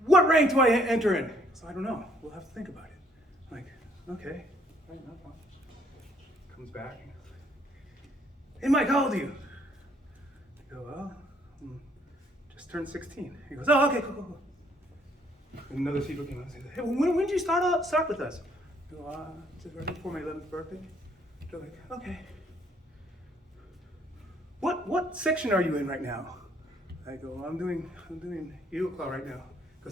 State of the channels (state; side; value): normal; both; correlation 0.65